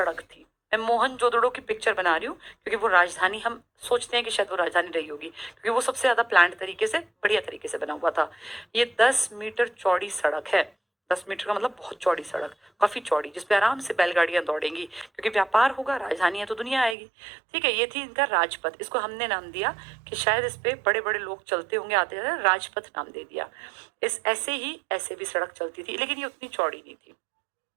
थी। मैं मोहनजोदड़ो की पिक्चर बना रही हूँ, क्योंकि वो राजधानी, हम सोचते हैं कि शायद वो राजधानी रही होगी, क्योंकि वो सबसे ज्यादा प्लान्ड तरीके से, बढ़िया तरीके से बना हुआ था। ये 10 मीटर चौड़ी सड़क है, 10 मीटर का मतलब बहुत चौड़ी सड़क, काफी चौड़ी, जिसपे आराम से बैलगाड़ियां दौड़ेंगी, क्योंकि व्यापार होगा, राजधानी है तो दुनिया आएगी। ठीक है, ये थी इनका राजपथ। इसको हमने नाम दिया कि शायद इस पे बड़े बड़े लोग चलते होंगे, आते जाते, राजपथ नाम दे दिया। इस ऐसे ही ऐसे भी सड़क चलती थी, लेकिन ये उतनी चौड़ी नहीं थी।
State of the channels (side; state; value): left; drops out; at 16.9 s